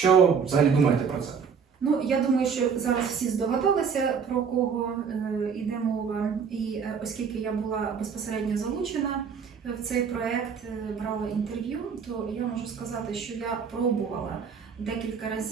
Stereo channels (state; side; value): quieter; left; 6.4 dB